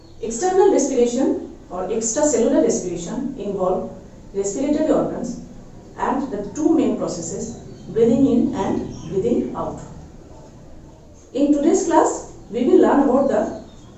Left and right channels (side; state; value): both; identical; correlation 1.00